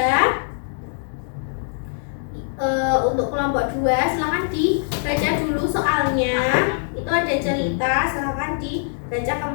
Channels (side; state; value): right; silent; digital silence